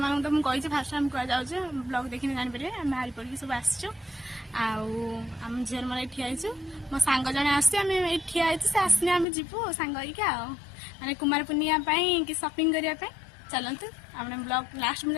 मानक तो मुझे फास्ट टाइम कह जाऊँ ब्लॉग देखने जानीपर आम बाहरी पड़ी सब आसचु आम झील मोर ठियाचु मो सांग जड़े आसम ठिया से आसने आम जीवु सांग मैंने कुमार पूर्णिमा कि शॉपिंग करने चलतु आपने ब्लॉग लास्ट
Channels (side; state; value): right; drops out; at 9.2 s